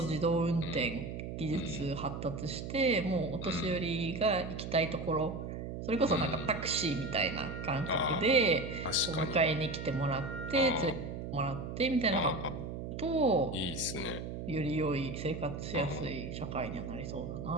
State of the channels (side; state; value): right; noise; hum, 6 dB below the sound